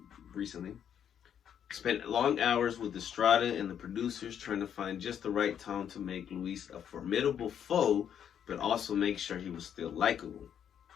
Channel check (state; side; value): quieter; right; 8.9 dB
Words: recently, spent long hours with Estrada and the producers trying to find just the right tone to make Luis a formidable foe, but also make sure he was still likable.